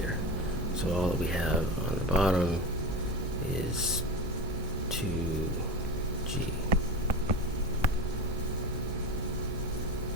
So all that we have on the bottom is 2g.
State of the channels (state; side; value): normal; both; correlation 0.25